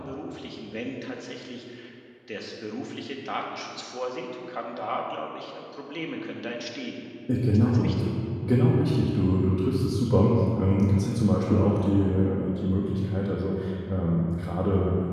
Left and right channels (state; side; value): identical; both; correlation 1.00